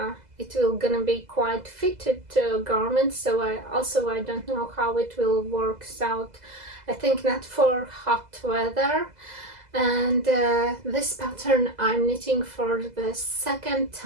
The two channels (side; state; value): left; late; 2.0 ms